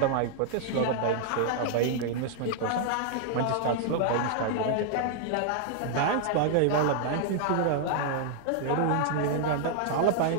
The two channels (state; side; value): different; both; correlation -0.01